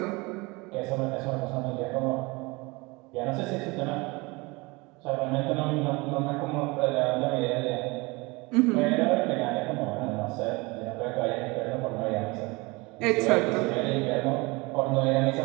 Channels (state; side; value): quieter; left; 25.0 dB